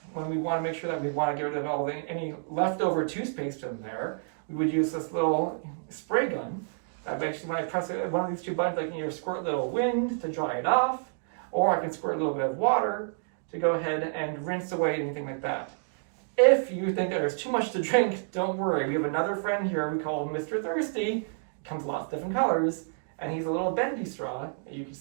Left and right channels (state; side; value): silent; left; digital silence